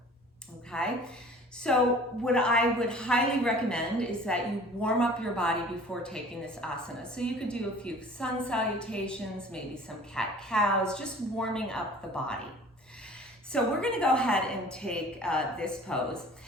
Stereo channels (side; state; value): both; normal; correlation 0.47